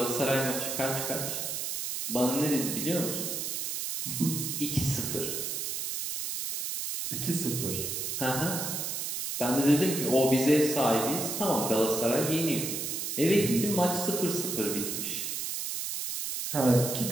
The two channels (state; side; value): noise; right; hiss, 3 dB below the sound